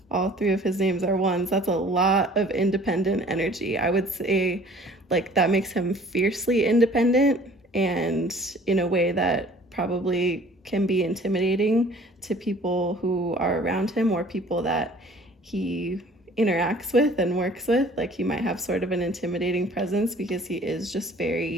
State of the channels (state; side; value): normal; both; correlation 0.51